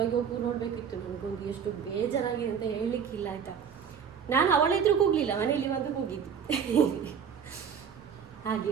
ಹೋಗಿ ನೋಡಬೇಕಿತ್ತು. ನನಗೊಂದು ಎಷ್ಟು ಬೇಜಾರಾಗಿದೆ ಅಂತ ಹೇಳಲಿಕ್ಕಿಲ್ಲ ಆಯಿತಾ. ನಾನು ಅವಳಿದ್ರೂ ಕೂಗಲಿಲ್ಲ, ಮನೆಯಲ್ಲಿ ಬಂದು ಕೂಗಿದ್ದು.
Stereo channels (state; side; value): quieter; left; 7.3 dB